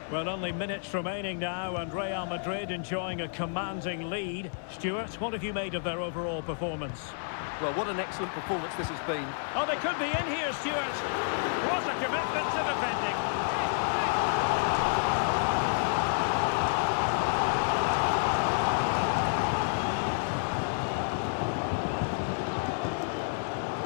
Well, only minutes remaining now, and Real Madrid enjoying a commanding lead. Stuart, what have you made of their overall performance? Well, what an excellent performance this has been. Oh, they could be in here, Stuart. What a commitment to defending.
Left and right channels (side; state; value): right; silent; 58 dB below the other